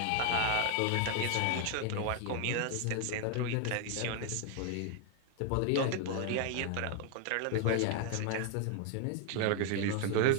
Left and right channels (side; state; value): both; different; correlation 0.00